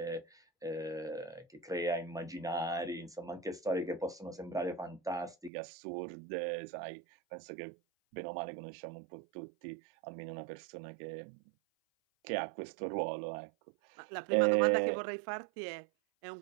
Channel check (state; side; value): drops out; left; at 5.5 s